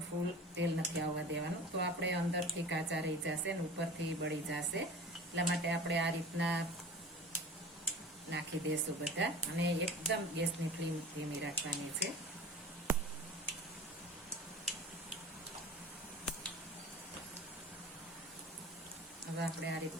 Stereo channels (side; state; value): both; normal; correlation 0.39